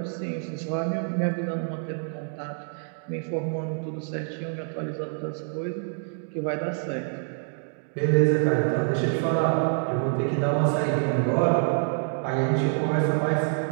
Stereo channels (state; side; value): silent; left; 60 dB below the other